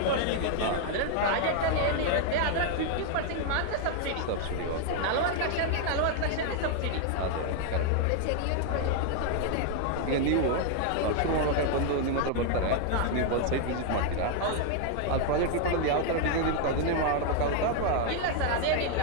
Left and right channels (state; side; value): different; both; correlation 0.00